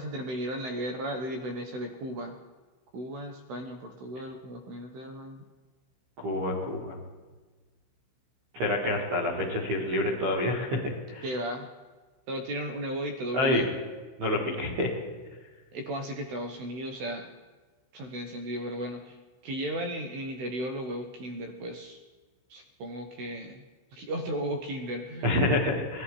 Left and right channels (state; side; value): late; left; 16 ms